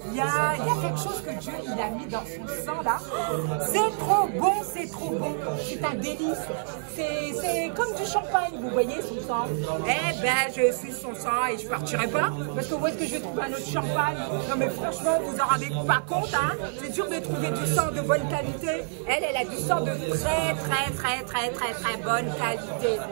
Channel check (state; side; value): silent; left; digital silence